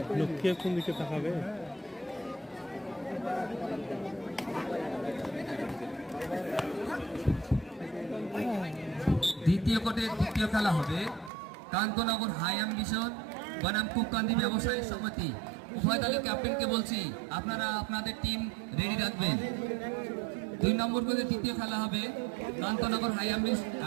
লক্ষ্যে কোন দিকে তাকাবে? দ্বিতীয় কোর্টের দ্বিতীয় খেলা হবে কান্তনগর হাই অ্যাম্বিশন বনাম কুককান্দি ব্যবসায়ী সমিতি। উভয় দলের ক্যাপ্টেনকে বলছি আপনারা আপনাদের টিম রেডি রাখবেন। 2 নম্বর কোর্টের তৃতীয় খেলা হবে কান্তনগর হাই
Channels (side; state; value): left; drops out; at 11.3 s